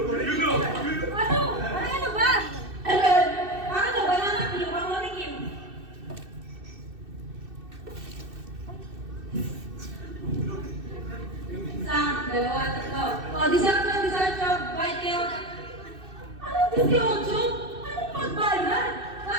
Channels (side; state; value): left; late; 2.6 ms